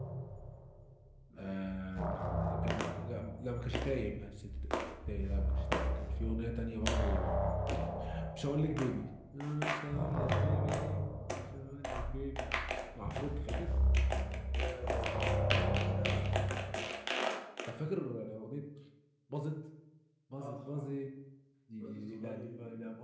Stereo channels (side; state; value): both; identical; correlation 1.00